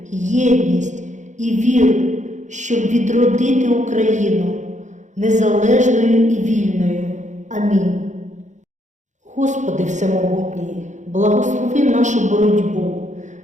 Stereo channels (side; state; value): left; late; 0.35 ms